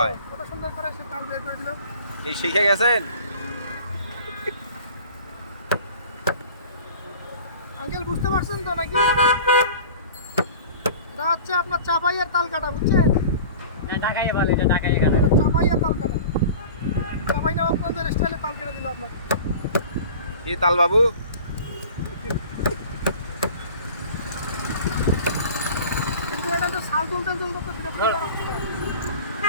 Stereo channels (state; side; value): inverted; both; correlation -0.41